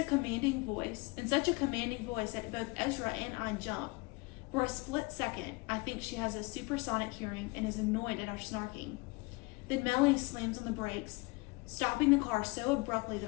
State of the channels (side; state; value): right; quieter; 26.3 dB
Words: commanding voice that both Ezra and I jump. For a split second, I think she has a supersonic hearing and is annoyed at our snarking. Then Melanie slams on the brakes, stopping the car so abruptly that